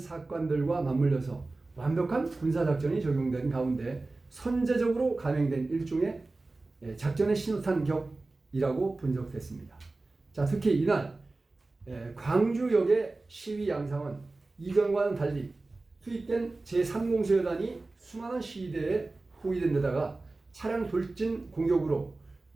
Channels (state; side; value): quieter; left; 3.3 dB